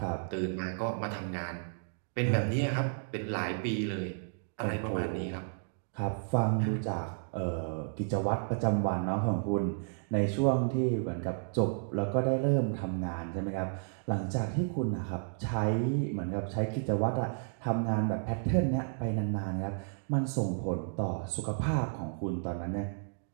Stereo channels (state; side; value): silent; left; digital silence